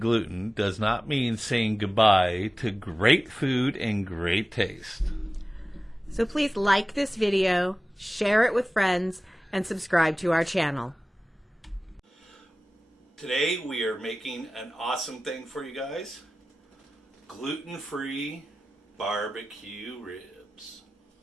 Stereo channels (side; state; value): both; normal; correlation 0.97